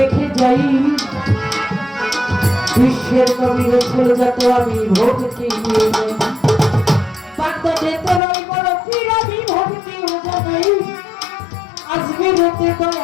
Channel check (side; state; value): right; drops out; at 8.2 s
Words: যাই বিশ্বের কবির ছেলে যত আমি ভক্তি নিয়ে যাই বাগদাদেতে রই বড় পীর আমি ভক্তি ও জানাই আজমিরেতে